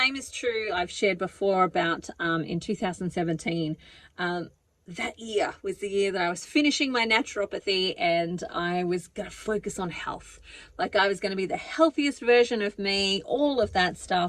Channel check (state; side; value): identical; both; correlation 1.00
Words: is true, I've shared before about in 2017, that year was the year that I was finishing my naturopathy, and I was going to focus on health. Like, I was going to be the healthiest version of me, all of that